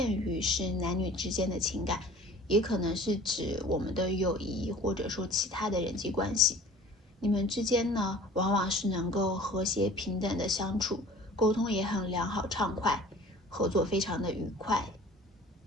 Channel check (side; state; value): both; normal; correlation 0.46